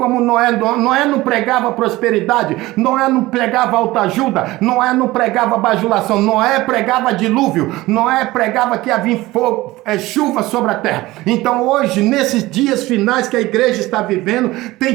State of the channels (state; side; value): quieter; left; 18.7 dB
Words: Noé não pregava prosperidade, Noé não pregava autoajuda, Noé não pregava bajulação, Noé pregava dilúvio, Noé pregava que havia fogo, chuva sobre a terra. Então hoje, nesses dias finais que a igreja está vivendo, tem